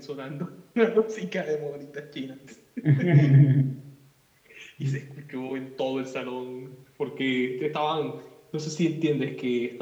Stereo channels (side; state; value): both; identical; correlation 1.00